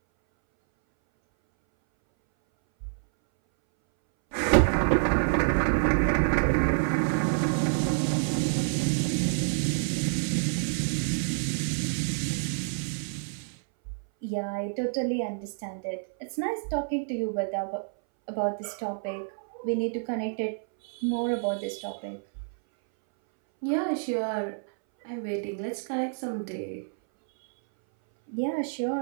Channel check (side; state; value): left; silent; 59 dB below the other